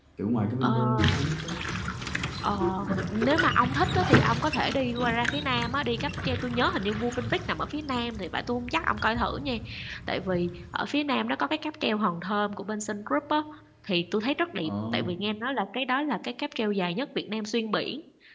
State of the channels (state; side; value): identical; both; correlation 1.00